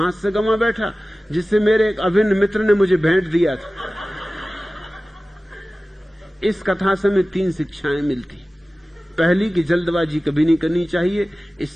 से गंवा बैठा, जिससे मेरे एक अभिन्न मित्र ने मुझे भेंट दिया था। इस कथा से हमें 3 शिक्षाएं मिलती। पहली कि जल्दबाजी कभी नहीं करनी चाहिए,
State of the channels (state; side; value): normal; both; correlation 0.96